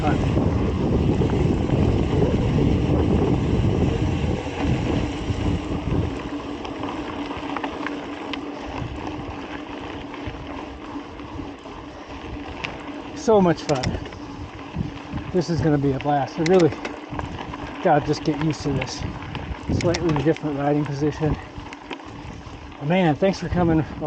So much fun. This is going to be a blast. I really gotta just get used to this slightly different riding position. Man, thanks for coming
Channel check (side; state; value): both; identical; correlation 1.00